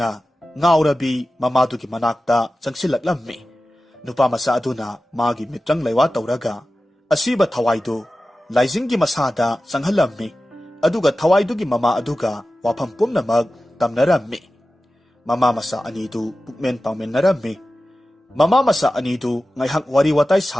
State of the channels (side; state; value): both; normal; correlation 0.94